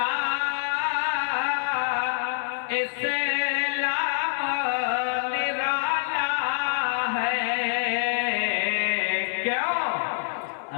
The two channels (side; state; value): right; silent; digital silence